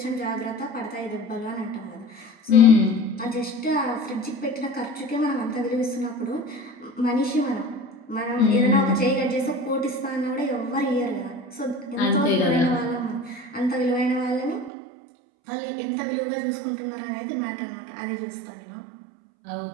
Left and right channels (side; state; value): left; drops out; at 14.7 s